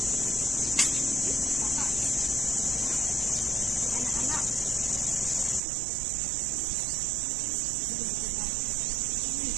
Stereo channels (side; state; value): left; drops out; at 5.6 s